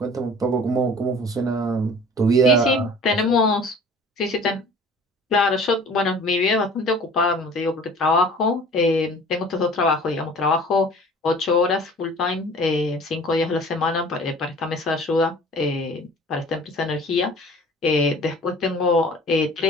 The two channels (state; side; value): normal; both; correlation 0.46